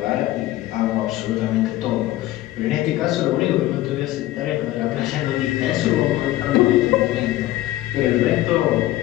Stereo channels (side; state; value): right; quieter; 15.7 dB